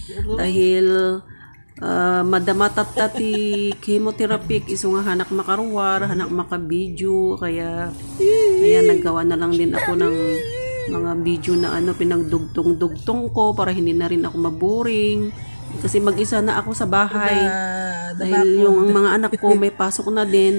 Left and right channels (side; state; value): both; inverted; correlation -1.00